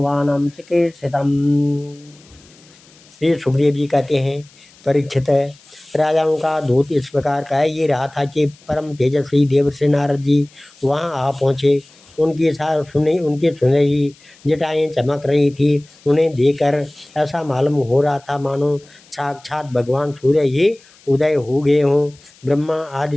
चिकीर्षितम्। श्री सुखदेव जी कहते हैं, परीक्षित, राजाओं का दूत इस प्रकार कह ये रहा था कि परम तेजस्वी देवर्षि नारद जी वहाँ आ पहुँचे। उनकी सुनहरी जटाएं चमक रही थी। उन्हें देखकर ऐसा मालूम हो रहा था मानो साक्षात भगवान सूर्य ही उदय हो गए हों। ब्रह्मा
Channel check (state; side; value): noise; left; hiss, 27 dB below the sound